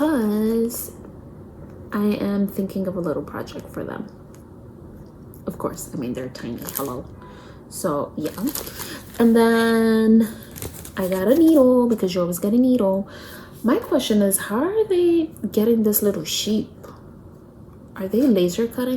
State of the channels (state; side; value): identical; both; correlation 1.00